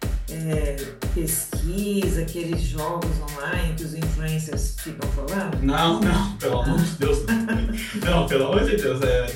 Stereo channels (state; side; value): identical; both; correlation 1.00